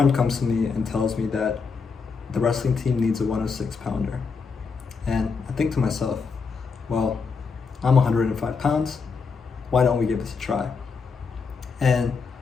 comes to me and tells me that the wrestling team needs a 106 pounder. And I think to myself, well, I'm 105 pounds. Why don't we give this a try? And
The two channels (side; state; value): right; quieter; 5.1 dB